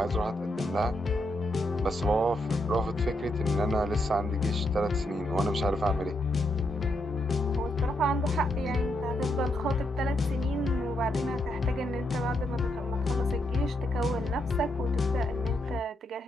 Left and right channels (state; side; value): normal; both; correlation 0.80